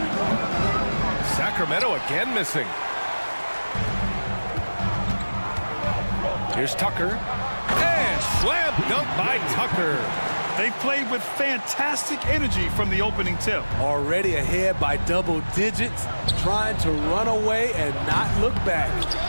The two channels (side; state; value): both; inverted; correlation -1.00